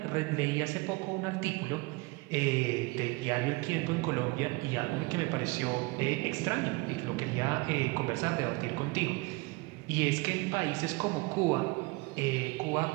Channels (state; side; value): quieter; left; 24.7 dB